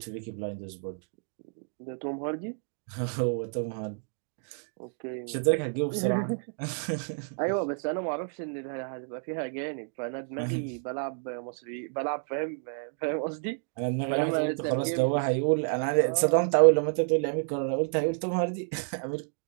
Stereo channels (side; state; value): left; silent; 58 dB below the other